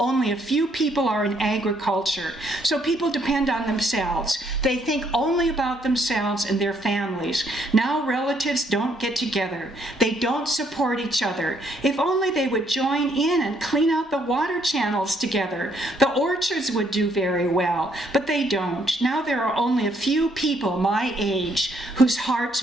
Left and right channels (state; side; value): normal; both; correlation 0.70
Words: a few people are in agriculture. So people depend on themselves. They think only about themselves and their families. Now relatives don't get together. They don't support each other. If only they would join in and clean out the water channels together. The orchards would do very well, but they don't. Now there are only a few people my age whose